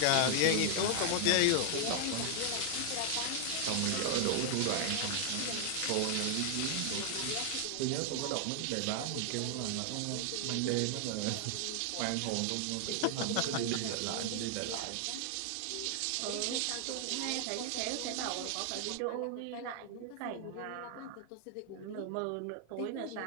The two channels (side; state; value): both; different; correlation 0.00